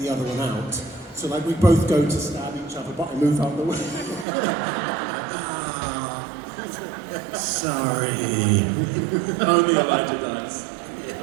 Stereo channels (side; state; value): left; drops out; at 4.2 s